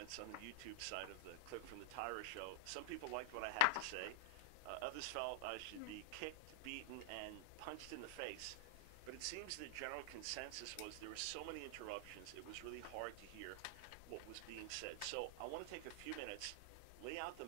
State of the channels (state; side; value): different; both; correlation -0.01